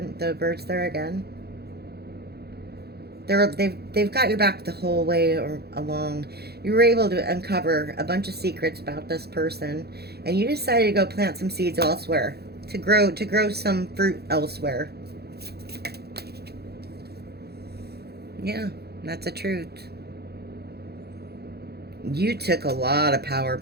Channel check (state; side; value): late; left; 0.47 ms